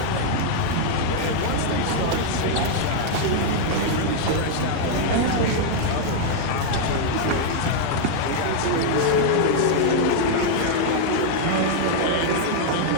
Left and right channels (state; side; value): different; both; correlation -0.01